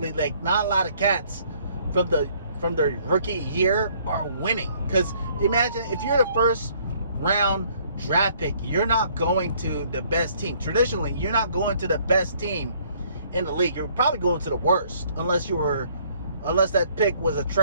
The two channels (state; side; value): inverted; both; correlation -0.62